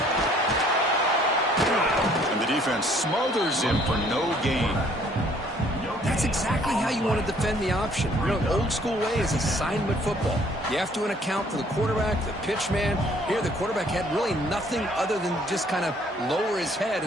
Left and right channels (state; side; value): normal; both; correlation 0.60